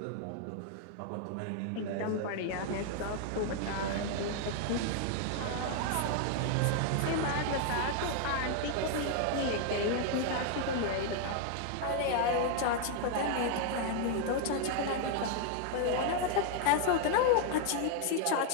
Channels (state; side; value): different; both; correlation 0.00